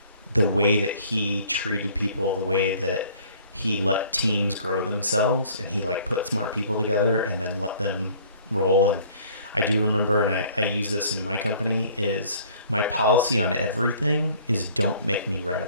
The way that he treated people, the way that he let teams grow themselves, and he like put smart people together and then let them roll. And I do remember, and I use this in my company, is my policy on everything is don't make me write a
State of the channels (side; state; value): both; inverted; correlation -0.54